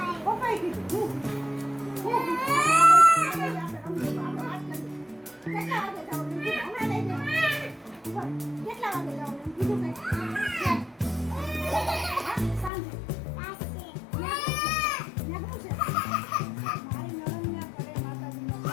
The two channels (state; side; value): drops out; right; at 12.7 s